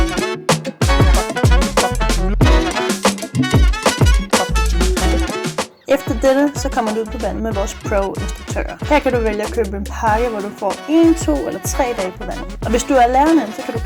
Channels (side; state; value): both; identical; correlation 1.00